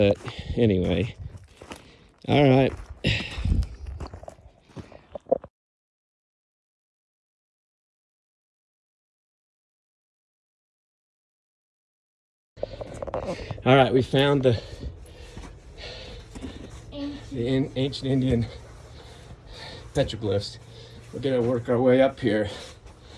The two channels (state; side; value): identical; both; correlation 1.00